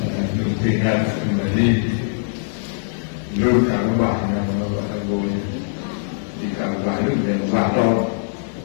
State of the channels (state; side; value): silent; right; digital silence